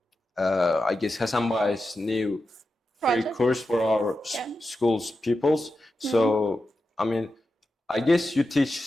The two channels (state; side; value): normal; both; correlation 0.90